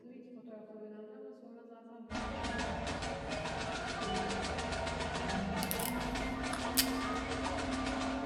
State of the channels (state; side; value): identical; both; correlation 1.00